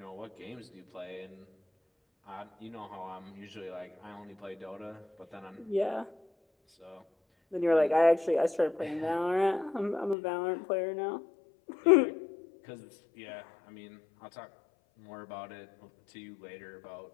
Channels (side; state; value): right; drops out; at 10.2 s